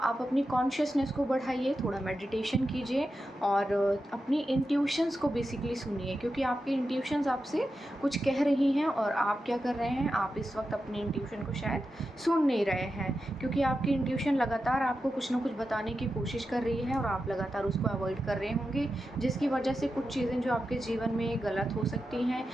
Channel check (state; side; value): normal; both; correlation 0.90